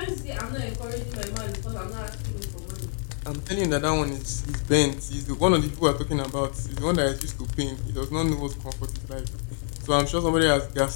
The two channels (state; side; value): silent; right; 60 dB below the other